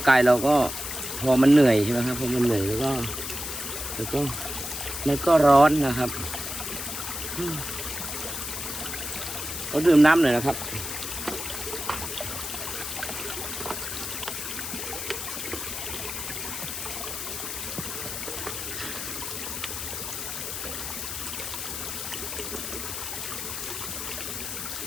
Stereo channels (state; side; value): noise; left; hiss, 5 dB below the sound